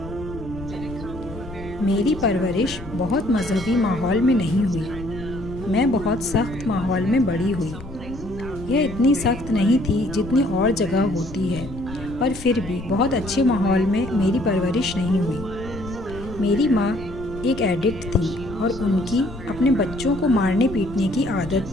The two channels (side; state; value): left; noise; rumble, 13 dB below the sound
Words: मेरी परवरिश बहुत मजहबी माहौल में नहीं हुई। मैं बहुत सख्त माहौल में बड़ी हुई। यह इतनी सख्त नहीं थी जितनी और जगह होती है, पर फिर भी बहुत अच्छे माहौल में मेरी परवरिश नहीं हुई। मेरी माँ एक एडिक्ट थी और उनकी अपने बच्चों को मारने पीटने की